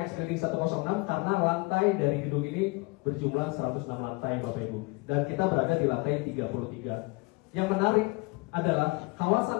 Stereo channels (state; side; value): quieter; right; 26.9 dB